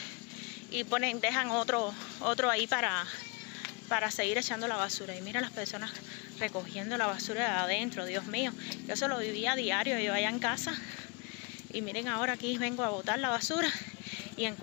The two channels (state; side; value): quieter; right; 31.9 dB